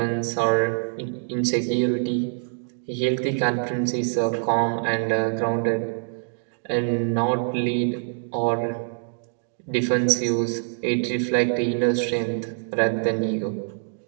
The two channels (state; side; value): silent; left; digital silence